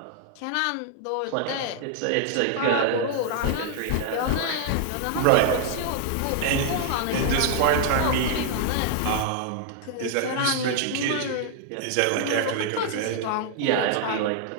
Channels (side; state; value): both; different; correlation 0.00